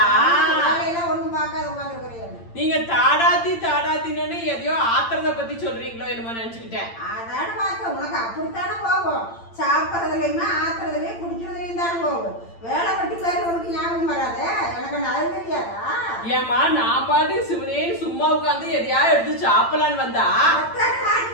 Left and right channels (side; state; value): right; late; 8.8 ms